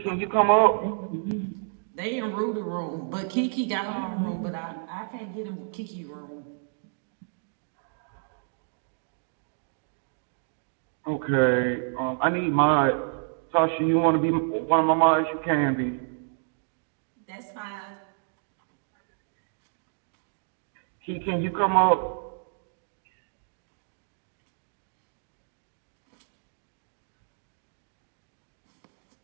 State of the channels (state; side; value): silent; left; digital silence